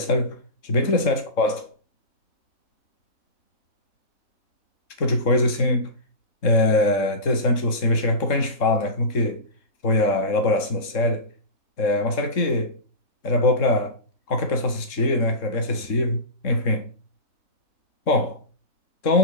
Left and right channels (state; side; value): late; right; 3.7 ms